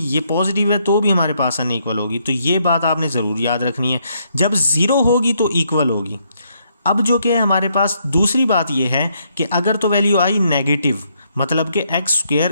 ये पॉजिटिव है तो भी हमारे पास अनइक्वल होगी। तो ये बात आपने ज़रूर याद रखनी है। जब ज़ीरो होगी तो इक्वल होगी। अब जो कि हमारे पास दूसरी बात ये है कि अगर तो वैल्यू आई नेगेटिव, मतलब कि x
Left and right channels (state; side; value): inverted; both; correlation -0.73